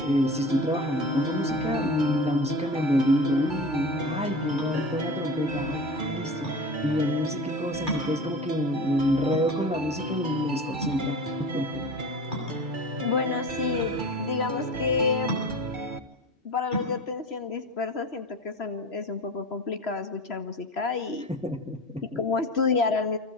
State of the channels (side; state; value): both; normal; correlation 0.34